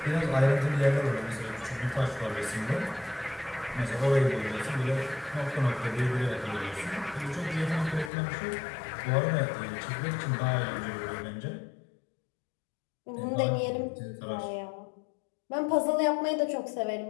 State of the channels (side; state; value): right; drops out; at 8.1 s